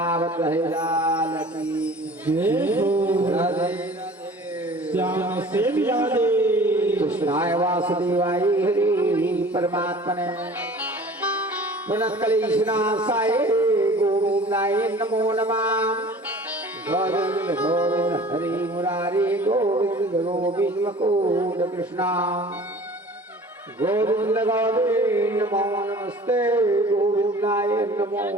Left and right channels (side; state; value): both; normal; correlation 0.45